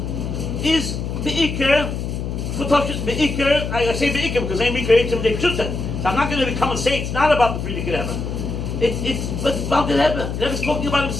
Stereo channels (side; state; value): left; noise; hum, 4 dB below the sound